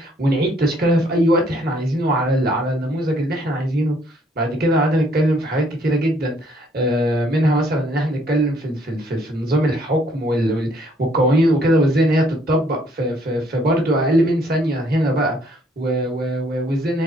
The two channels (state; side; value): normal; both; correlation 0.65